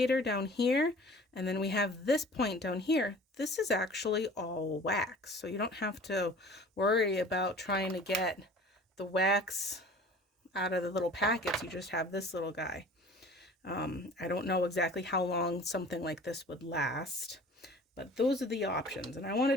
down here, and then we have this point down here. This is actually all wax, so you don't have to worry about trying to get the wax out of the little packets. You just have this little guy. I don't know exactly how long something like this would last, but those are the options, and I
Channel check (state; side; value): normal; both; correlation 0.45